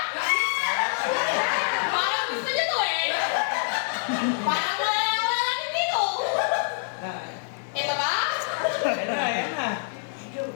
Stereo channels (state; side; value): silent; right; digital silence